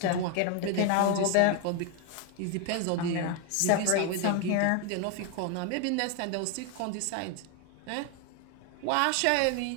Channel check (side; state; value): both; different; correlation 0.01